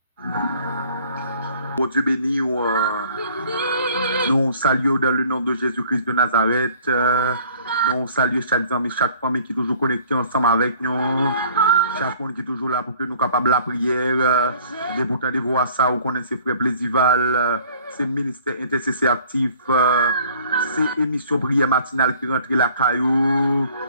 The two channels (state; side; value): inverted; both; correlation -0.54